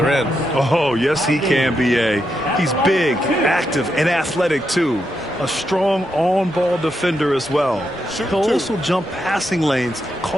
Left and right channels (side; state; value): both; normal; correlation 0.83